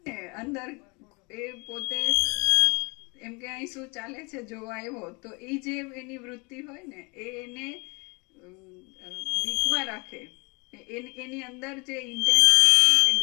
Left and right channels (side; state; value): right; quieter; 29.3 dB